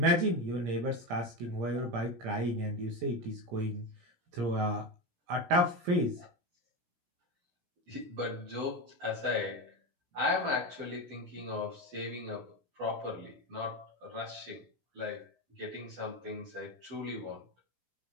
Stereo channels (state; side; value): late; left; 17 ms